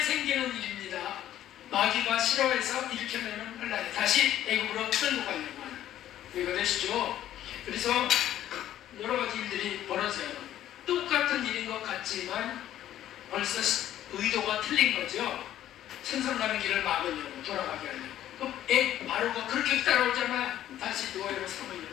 일입니다. 마귀가 싫어해서 일으켜내는 혼란이 다시 애국으로 끌고 가려고 하는. 이거 되시죠? 그래서 여러 가지 일들이 벌어져요. 똑같은 일인 것 같지만 벌써 의도가 틀린 거죠. 천상 가는 길을 막으려고 돌아가게 하려고. 바로가 그렇게 따라오잖아요. 다시 노예로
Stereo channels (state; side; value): quieter; right; 12.2 dB